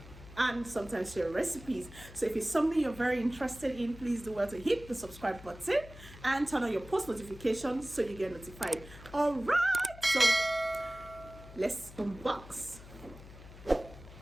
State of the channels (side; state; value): left; noise; hum, 17 dB below the sound